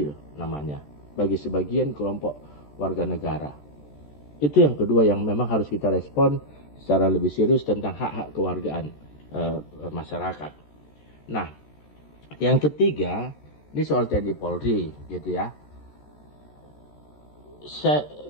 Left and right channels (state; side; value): late; right; 14 ms